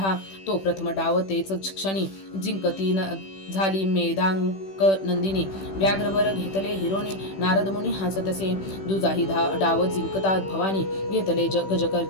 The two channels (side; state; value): right; late; 15 ms